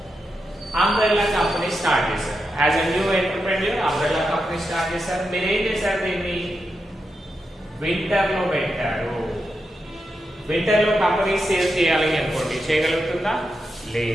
కంపెనీ స్టార్ట్ చేశారు. As a new entrepreneur umbrella company start చేశారు. మీరు ఏం చేశారు, దీన్ని వింటర్ లో పెట్టారు. వింటర్ లో కంపెనీ సేల్ చేయాలి అనుకోండి, చేయగలుగుతుందా?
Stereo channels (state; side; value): normal; both; correlation 0.87